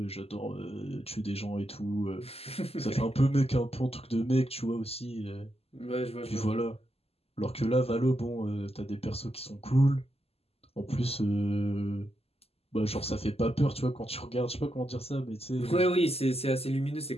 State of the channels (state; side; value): late; right; 0.29 ms